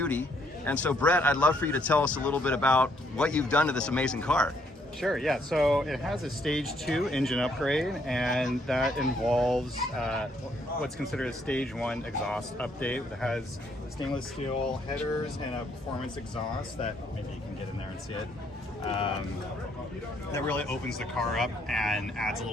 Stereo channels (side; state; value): both; normal; correlation 0.70